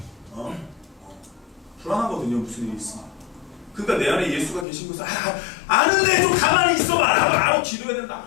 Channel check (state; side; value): drops out; right; at 4.7 s